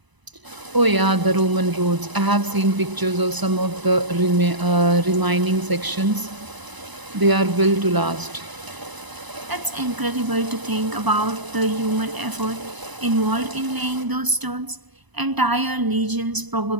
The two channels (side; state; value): left; late; 1.0 ms